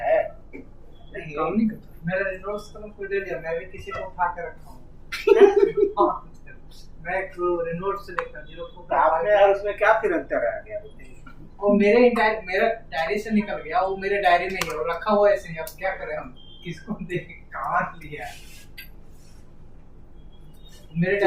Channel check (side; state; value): both; identical; correlation 1.00